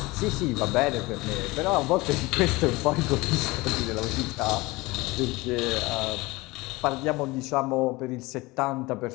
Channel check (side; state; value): right; quieter; 22.1 dB